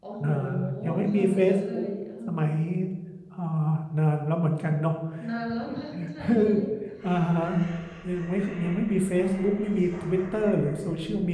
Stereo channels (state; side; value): identical; both; correlation 1.00